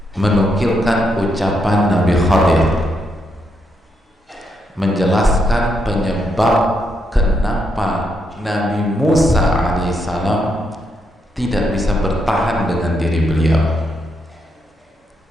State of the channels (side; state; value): both; normal; correlation 0.79